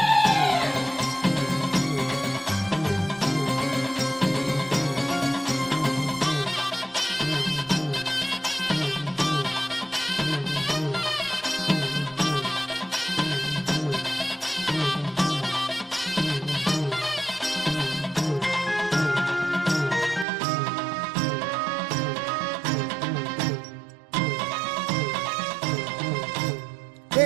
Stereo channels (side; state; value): left; drops out; at 20.2 s